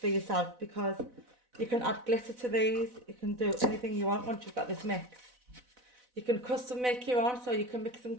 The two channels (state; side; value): late; left; 4.0 ms